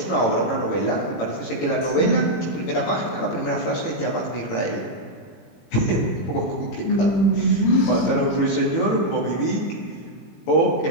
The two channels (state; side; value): late; right; 18 ms